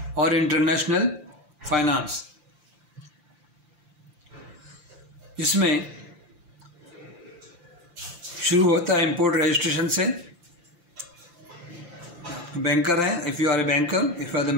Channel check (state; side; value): late; left; 5.8 ms